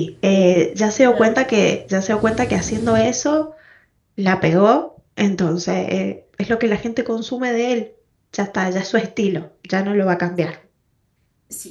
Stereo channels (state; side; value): identical; both; correlation 1.00